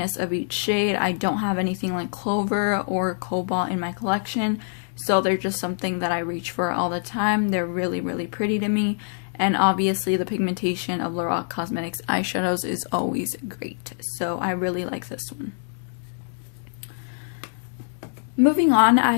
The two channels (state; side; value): silent; right; digital silence